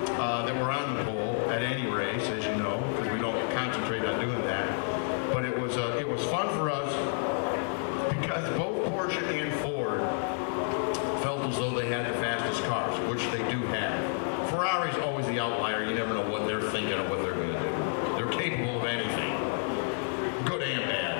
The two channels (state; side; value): silent; right; 58 dB below the other